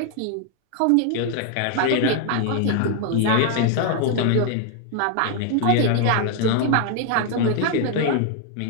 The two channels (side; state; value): both; different; correlation 0.00